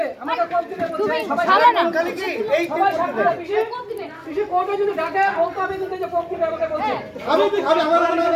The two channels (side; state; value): both; identical; correlation 1.00